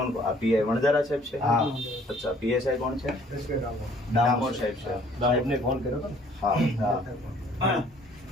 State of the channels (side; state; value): both; normal; correlation 0.58